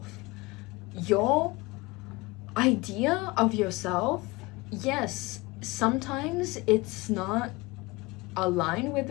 Your idea of yourself, yes, sometimes it's not aligned with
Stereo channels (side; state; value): right; quieter; 23.2 dB